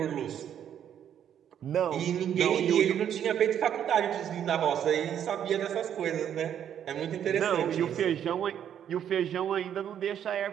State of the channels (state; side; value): quieter; left; 9.5 dB